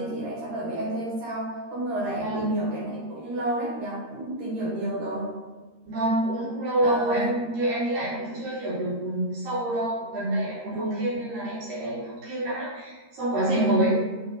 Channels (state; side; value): late; left; 13 ms